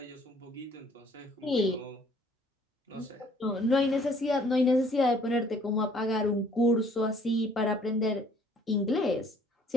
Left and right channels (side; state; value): both; normal; correlation 0.58